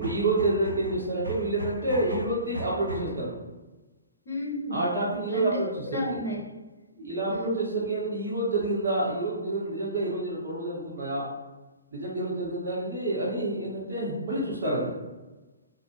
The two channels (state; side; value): inverted; both; correlation -0.43